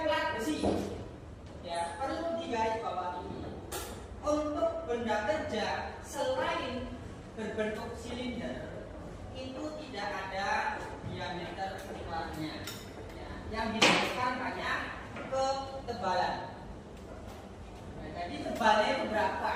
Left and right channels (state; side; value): identical; both; correlation 1.00